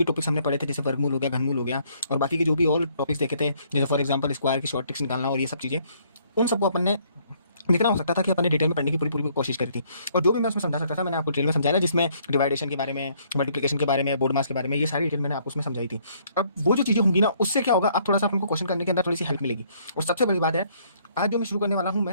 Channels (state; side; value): inverted; both; correlation -0.66